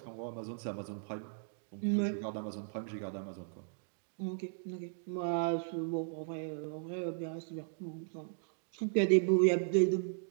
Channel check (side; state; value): left; silent; digital silence